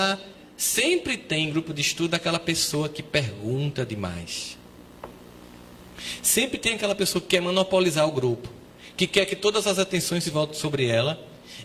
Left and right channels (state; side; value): identical; both; correlation 1.00